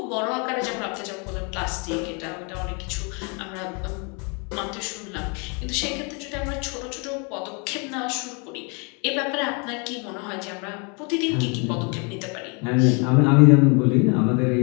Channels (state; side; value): quieter; right; 33.8 dB